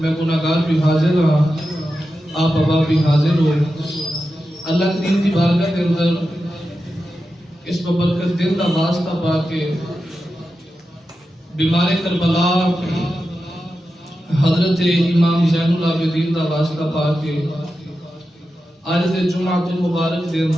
گناہگار بھی حاضر ہاں آپ ابا بھی حاضر ہو اللہ کریم دی بارگاہ کے اندر اس ببرکت دل دا واسطہ پا کے بیمار کربلا حضرت امام زین العابدین دا واسطہ پا کے آج دے جمعۃ المبارک دے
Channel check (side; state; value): both; normal; correlation 0.91